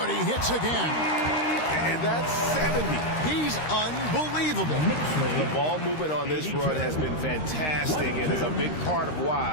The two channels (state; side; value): late; right; 13 ms